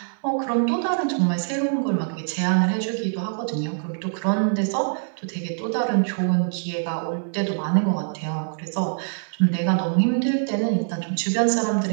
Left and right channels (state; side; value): silent; left; digital silence